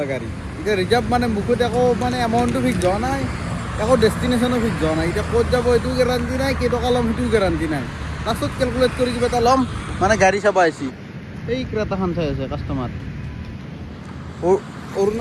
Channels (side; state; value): both; identical; correlation 1.00